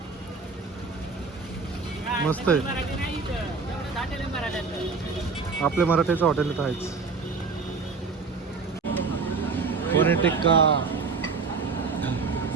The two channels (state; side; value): quieter; left; 4.7 dB